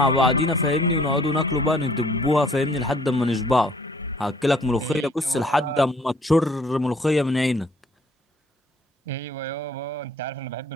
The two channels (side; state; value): both; normal; correlation 0.58